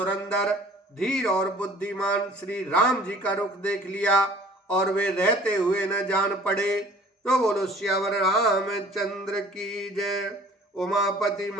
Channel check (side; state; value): both; normal; correlation 0.50